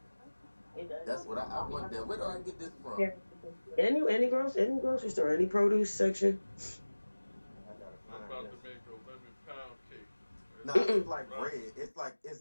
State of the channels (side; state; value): both; inverted; correlation -1.00